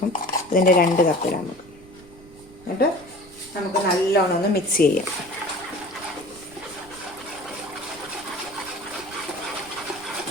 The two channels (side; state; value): right; noise; rumble, 22 dB below the sound